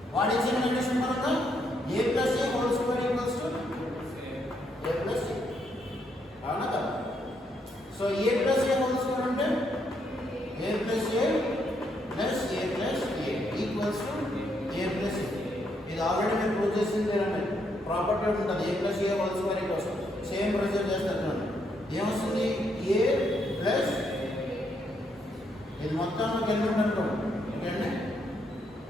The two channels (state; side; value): normal; both; correlation 0.75